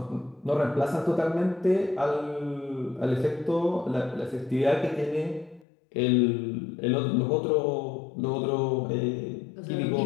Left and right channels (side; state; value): right; drops out; at 5.7 s